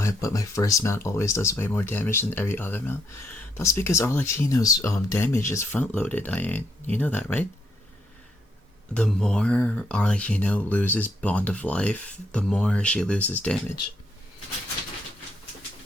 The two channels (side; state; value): both; normal; correlation 0.75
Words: but my first mount always does way more damage than every other mount. That's because Arlecchino's damage is front loaded, Ian. You know that, right? The more Arlecchino loses Bond of Life, the more she loses damage.